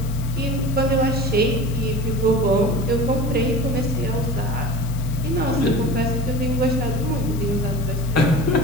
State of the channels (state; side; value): noise; left; hiss, 18 dB below the sound